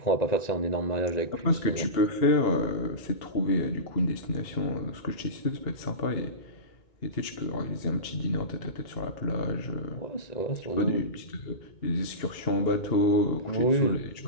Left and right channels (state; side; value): late; right; 2.7 ms